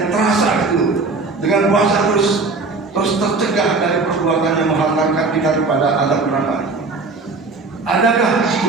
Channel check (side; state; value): left; quieter; 3.8 dB